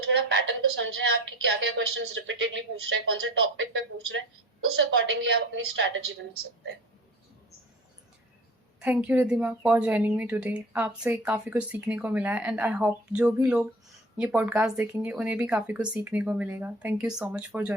थोड़ा पैटर्न को समझें आप कि क्या क्या क्वेश्चंस रिपीटेडली पूछ रहे हैं, कौन से टॉपिक पे पूछ रहे हैं, उस अकॉर्डिंगली आप अपनी स्ट्रैटेजी बना सकते हैं. Thank you Riddhima for joining me today. आपसे काफ़ी कुछ सीखने को मिला है एंड आई होप जो भी लोग ये पॉडकास्ट देखेंगे उन्हें भी काफ़ी कुछ सीखने को मिलेगा. Thank you so much for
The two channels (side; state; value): both; normal; correlation 0.42